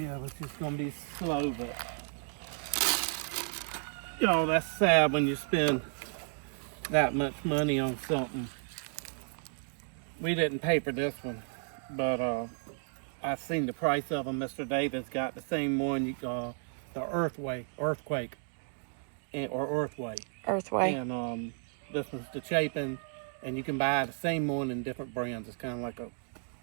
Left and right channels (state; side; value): silent; left; 56 dB below the other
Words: it's just going to be slow, but... Y'all, that's sad when you spend that much money on something. We didn't pay for this one, but I seen the price of them. Mr. Davis got the same one, the Earthway, or Earthway. Earthway. And this one's the Chapin, and you can buy the same one in different brands. It's kind of like a